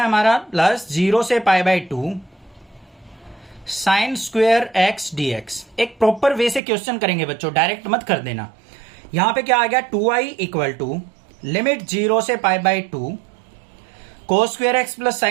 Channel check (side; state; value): left; drops out; at 6.6 s